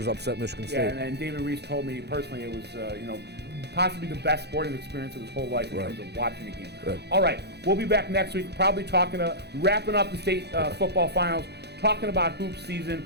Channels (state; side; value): late; left; 0.48 ms